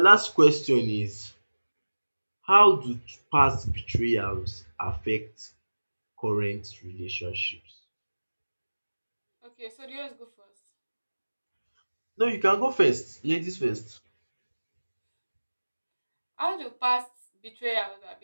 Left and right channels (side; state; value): both; inverted; correlation -1.00